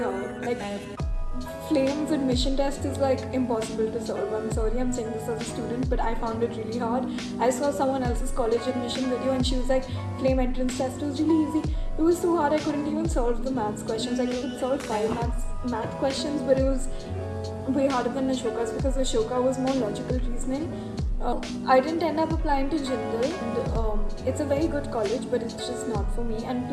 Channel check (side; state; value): both; identical; correlation 1.00